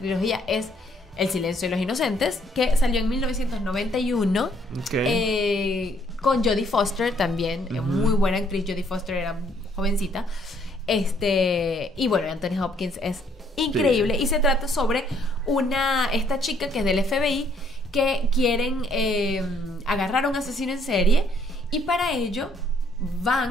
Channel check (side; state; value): both; normal; correlation 0.67